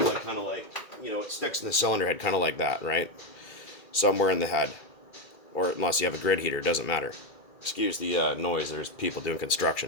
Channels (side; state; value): right; late; 2.7 ms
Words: like, kind of like, it sticks in the cylinder head, kind of like that, right? Somewhere in the head, or unless you have a grid heater, it doesn't matter. Excuse the noise, there's people doing